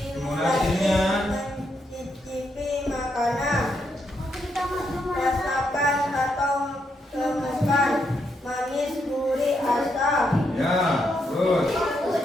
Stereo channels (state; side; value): normal; both; correlation 0.79